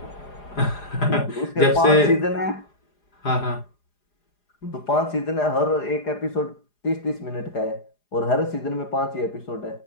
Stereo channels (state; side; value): late; right; 4.9 ms